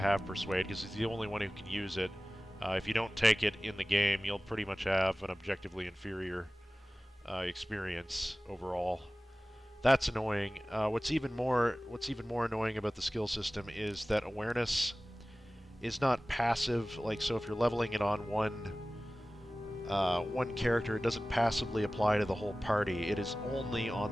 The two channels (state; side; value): normal; both; correlation 0.97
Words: Persuade, because he's the only one who can use it. If you don't take it in the game, you'll pretty much have an objectively inferior experience overall. That's annoying. What's even more annoying about the skill system is that awareness is not passive. Like, so if you're leveling it on one character, it doesn't passively apply to the whole party. It is only on